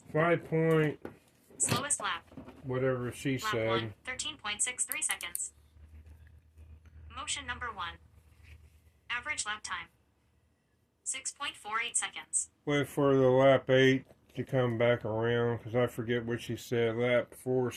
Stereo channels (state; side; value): identical; both; correlation 1.00